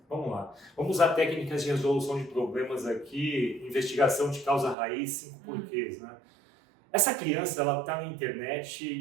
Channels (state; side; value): drops out; left; at 4.8 s